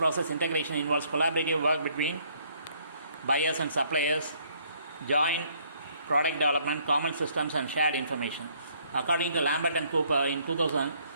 integration involves collaborative work between buyers and suppliers, joint product development, common systems and shared information. According to Lambert and Cooper in 2000,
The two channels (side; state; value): both; inverted; correlation -0.65